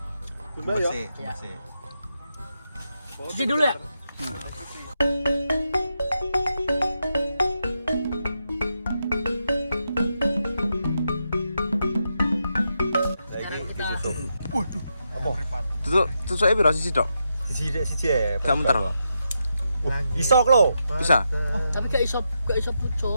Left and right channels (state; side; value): inverted; both; correlation -0.84